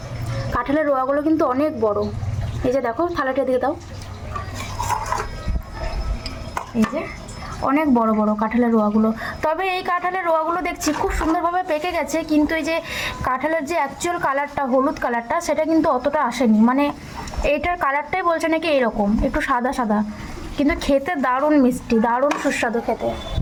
কাঁঠালের রোয়াগুলো কিন্তু অনেক বড়। এই যে দেখো থালাটা দিয়ে দাও, এই যে অনেক বড় বড় কাঁঠালের রোয়াগুলো। তবে এই কাঁঠালের রোয়াগুলো দেখছি খুব সুন্দরভাবে পেকে গেছে, কিন্তু এই যে কাঁঠালের যে অ্যাকচুয়াল কালারটা, হলুদ কালারটা, সেটা কিন্তু অতটা আসেনি। মানে এইটার কালারটাই বলছে নাকি এরকম একটু সাদা সাদা, কিন্তু খেতে দারুণ মিষ্টি, দারুণ সুস্বাদু খেতে।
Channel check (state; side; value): identical; both; correlation 1.00